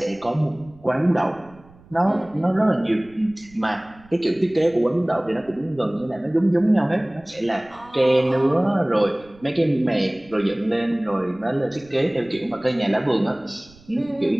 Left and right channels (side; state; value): right; noise; rumble, 26 dB below the sound